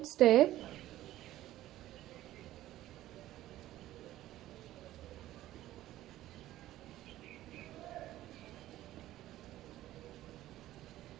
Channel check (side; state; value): left; quieter; 14.6 dB